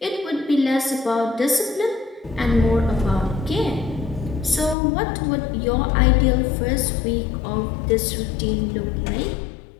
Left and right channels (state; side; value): drops out; right; at 4.8 s